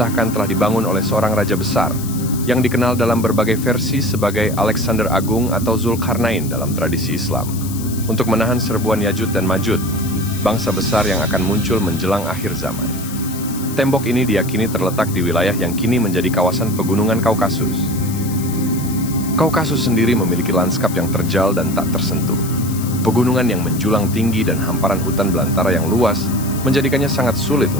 telah dibangun oleh seorang raja besar, yang dikenal dalam berbagai versi sebagai Alexander Agung atau Zulkarnain dalam tradisi Islam, untuk menahan serbuan Yajud dan Majud, bangsa besar yang akan muncul menjelang akhir zaman. Tembok ini diyakini terletak di wilayah yang kini menjadi kawasan Pegunungan Kaukasus. Kaukasus sendiri memiliki lanskap yang terjal dan tak tersentuh. Pegunungan yang menjulang tinggi dan hamparan hutan belantara yang luas menjadikannya sangat sulit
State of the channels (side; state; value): left; noise; hiss, 12 dB below the sound